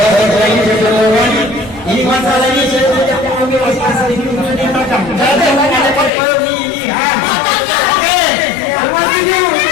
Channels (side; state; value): right; drops out; at 6.1 s